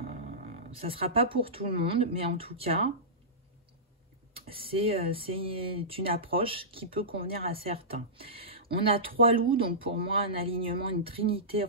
Ça ne sera pas pour tout le monde, mais en tout cas, c'est une approche qui peut convenir à certains. On a 3 loups, donc pour moi, un alignement, une trinité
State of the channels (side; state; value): both; normal; correlation -0.19